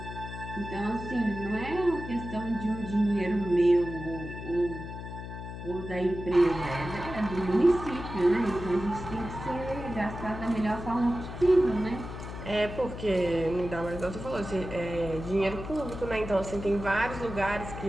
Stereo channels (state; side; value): noise; left; hum, 9 dB below the sound